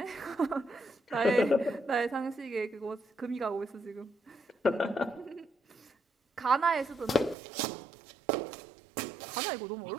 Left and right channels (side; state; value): left; drops out; at 7.4 s